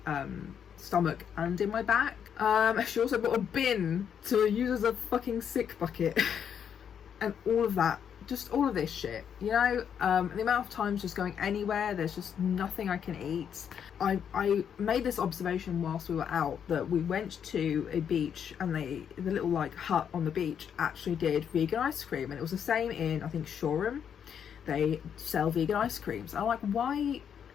stomach and in my back. She also bought a bin to use as a fucking sick bucket and all of that, just all of this shit, you know. The amount of times just going anywhere, there's just nothing I can eat. I made this observation whilst we were out, that we went to a beach and the little like hut on the beach actually did vegan ice cream, and it was the same in, I think, Shoreham. They sell vegan ice creams. I'm like, why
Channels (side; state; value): right; quieter; 8.1 dB